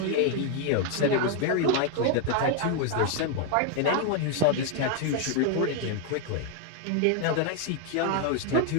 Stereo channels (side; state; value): both; different; correlation 0.01